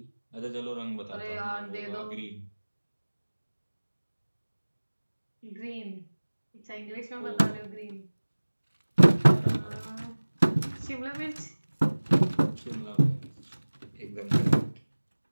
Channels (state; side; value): inverted; both; correlation -1.00